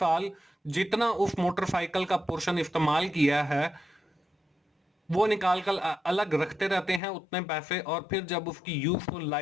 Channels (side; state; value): right; drops out; at 7.0 s